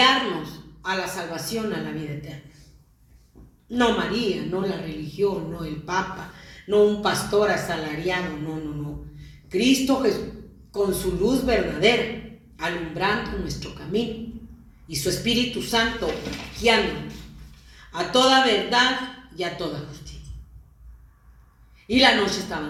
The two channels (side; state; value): both; identical; correlation 1.00